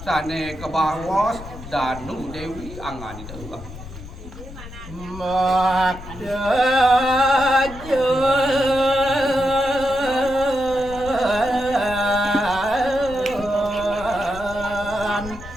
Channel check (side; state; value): left; noise; rumble, 14 dB below the sound